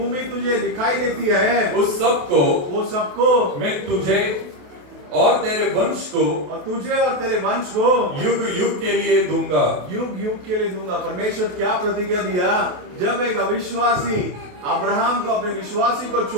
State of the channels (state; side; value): late; left; 28 ms